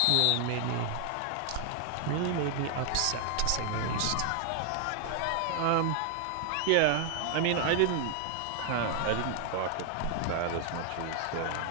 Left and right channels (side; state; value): both; different; correlation 0.00